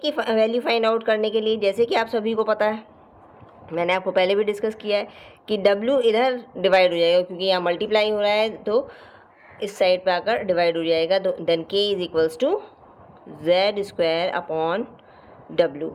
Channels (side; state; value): both; identical; correlation 1.00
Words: की वैल्यू फाइंड आउट करने के लिए, जैसे कि आप सभी को पता है, मैंने आपको पहले भी डिस्कस किया है कि w इधर डिवाइड हो जाएगा, क्योंकि यहाँ मल्टीप्लाई हो रहा है तो इस साइड पे आकर डिवाइड हो जाएगा। Then k is equals to z square upon w।